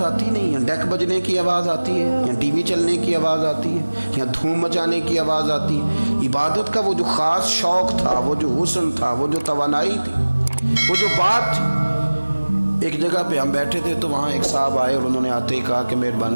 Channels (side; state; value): both; inverted; correlation -1.00